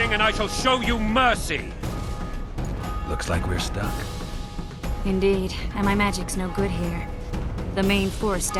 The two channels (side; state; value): both; identical; correlation 1.00